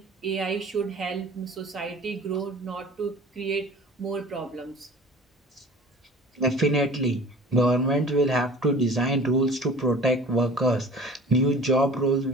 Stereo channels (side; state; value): both; normal; correlation 0.43